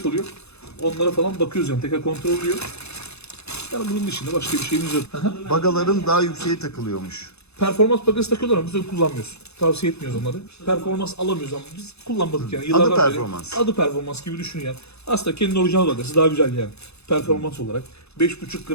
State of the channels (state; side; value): late; right; 0.80 ms